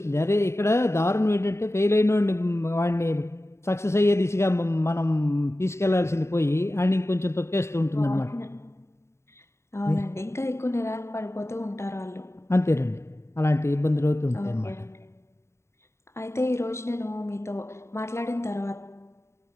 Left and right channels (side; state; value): right; late; 0.13 ms